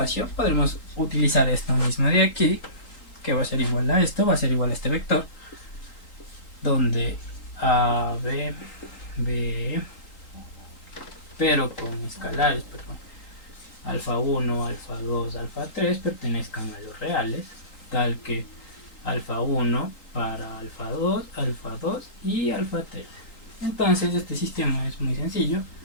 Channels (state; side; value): late; right; 3.8 ms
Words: Podremos utilizar esto mismo de aquí, que va a ser igual a esto, va a ser igual a este vector, donde A, B, pero con escalares, perdón. alfa 1, alfa 2, alfa 3 pertenezcan a los reales, tal que alfa 1 para alfa 2 y alfa 3. Entonces este sistema es muy sencillo,